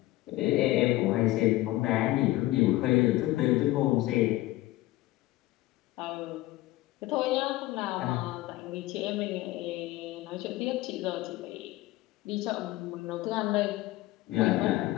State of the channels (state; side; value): quieter; right; 17.5 dB